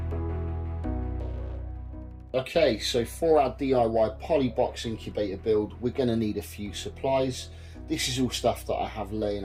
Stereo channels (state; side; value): identical; both; correlation 1.00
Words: Okay, so for our DIY Polybox incubator build, we're going to need a few supplies. This is all stuff that I have laying